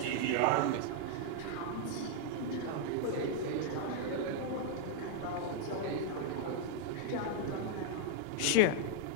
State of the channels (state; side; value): different; both; correlation 0.00